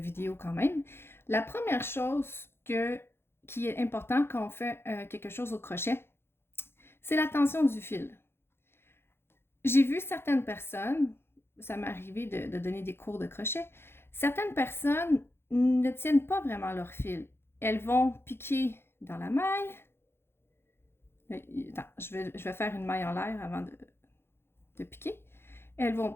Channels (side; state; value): right; late; 0.11 ms